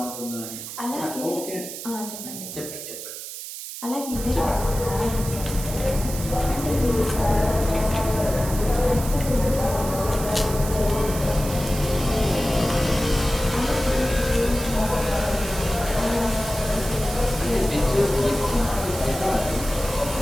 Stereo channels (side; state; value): right; noise; hiss, 9 dB below the sound